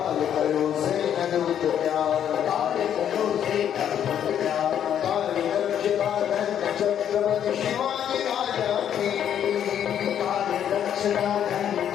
करो से अद्भुत प्यार काल करो से अद्भुत प्यार काल रक्षका धन चक्रवर्ती शिवाजी राजा की काल रक्षका धन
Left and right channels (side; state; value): right; quieter; 9.6 dB